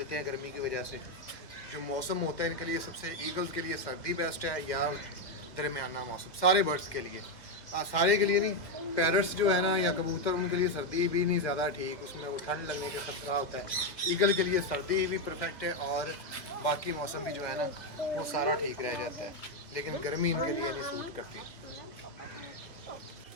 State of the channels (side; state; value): right; late; 2.7 ms